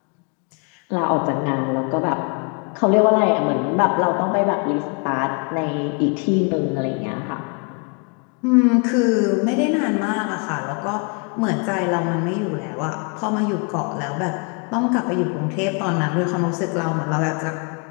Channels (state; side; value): quieter; right; 36.0 dB